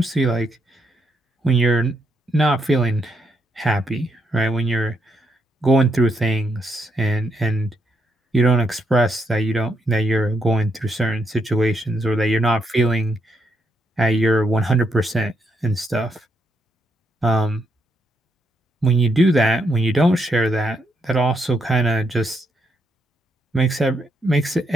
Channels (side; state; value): both; normal; correlation 0.78